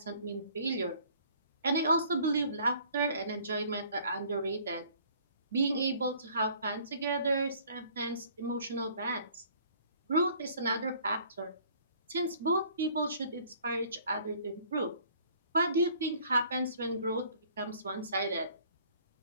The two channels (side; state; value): both; inverted; correlation -0.56